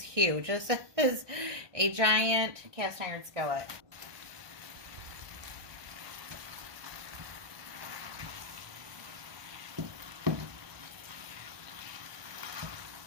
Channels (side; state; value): left; late; 1.2 ms